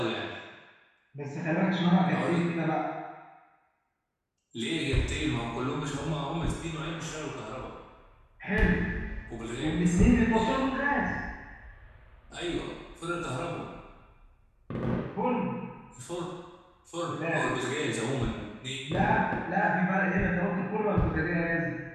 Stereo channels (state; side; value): identical; both; correlation 1.00